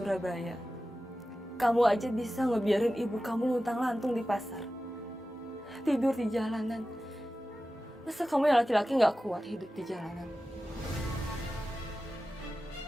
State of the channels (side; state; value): both; normal; correlation 0.94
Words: kamu aja bisa ngebiarin ibu kamu luntang-lantung di pasar. Tidur di jalanan. Masa kamu yang laki-laki gak kuat hidup di jalanan?